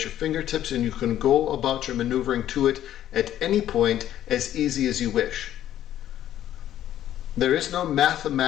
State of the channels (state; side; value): quieter; right; 11.9 dB